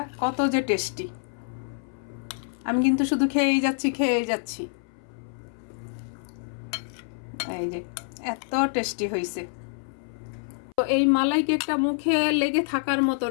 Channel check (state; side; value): silent; right; 60 dB below the other